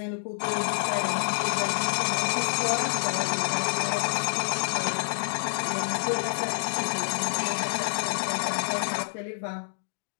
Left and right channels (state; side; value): silent; right; digital silence